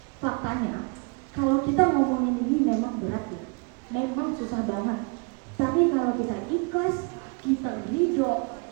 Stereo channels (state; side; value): quieter; left; 33.5 dB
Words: Faktanya, kalau kita ngomongin ini memang berat ya, memang susah banget. Tapi kalau kita ikhlas, kita ridho,